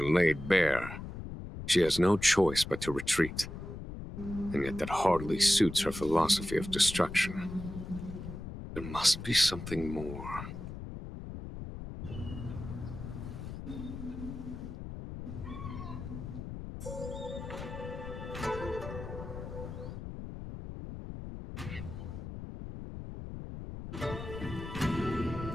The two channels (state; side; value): noise; left; rumble, 9 dB below the sound